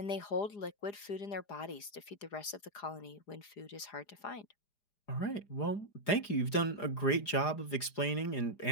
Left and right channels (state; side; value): late; right; 4.9 ms